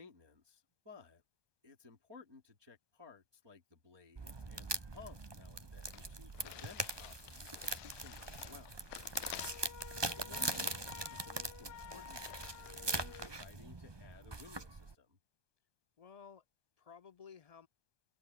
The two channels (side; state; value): left; late; 1.2 ms